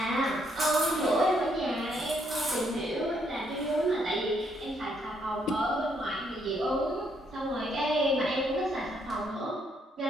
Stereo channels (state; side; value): normal; both; correlation 0.72